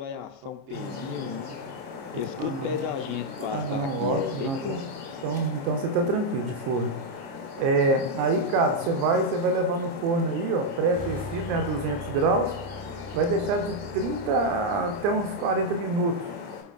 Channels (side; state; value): left; late; 30 ms